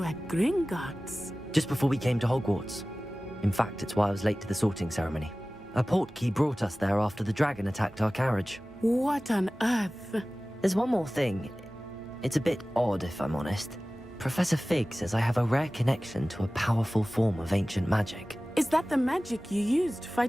at Gringotts? Just before we came to Hogwarts. In fact, it's why I was late to the sorting ceremony. A portkey brought us there after the dragon attacked our carriage. What on earth? There's one more thing. It's a bit odd, if I'm honest. Professor Fig says I have a rare connection to a powerful form of ancient magic. Is that the magic you used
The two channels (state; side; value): normal; both; correlation 0.97